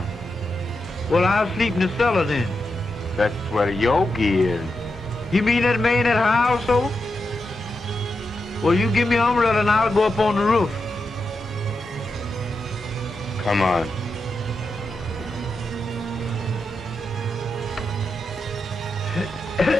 Well, I'll sleep in the cellar then. That's where Yogi is. You mean that man at her household? Well, you give me an umbrella and I'll go up on the roof. Come on.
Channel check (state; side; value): normal; both; correlation 0.87